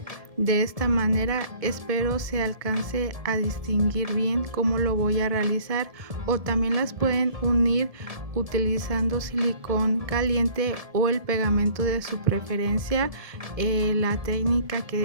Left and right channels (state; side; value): late; left; 1.7 ms